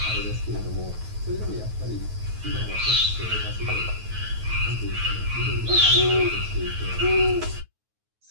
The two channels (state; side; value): late; left; 9.3 ms